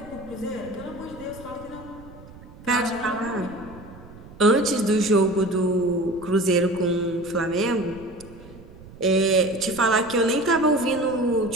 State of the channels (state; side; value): noise; right; rumble, 19 dB below the sound